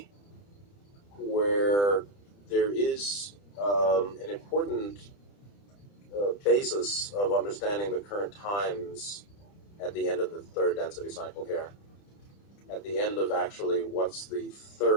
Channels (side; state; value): right; late; 30 ms